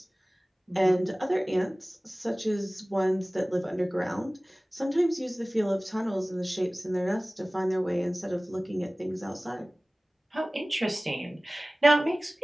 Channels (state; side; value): normal; both; correlation 0.98